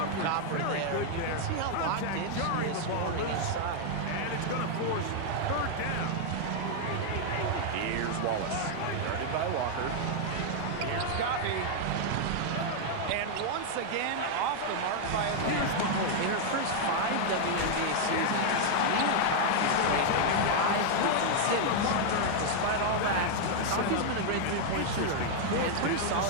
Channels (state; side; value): different; both; correlation 0.00